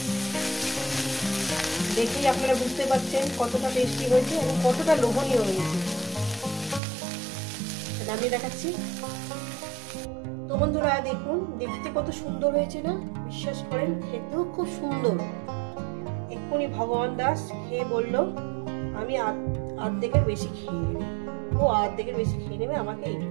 দেখেই আপনারা বুঝতে পারছেন কতটা টেস্টি হয়েছে এবং কতটা লোভনীয় হয়েছে। নামিয়ে দেখাচ্ছি। তো বন্ধুরা দেখুন, দেখতে কত সুন্দর হয়েছে না? বিশ্বাস করেন খেতেও খুব সুন্দর। এক্ষুনি ভগবান দাস খেয়ে বলল আমি আর্ধেকের বেশি খেয়ে নেবে। ও আর্ধেকের বেশি খেয়ে নেবে, আমাকে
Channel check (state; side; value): drops out; left; at 6.8 s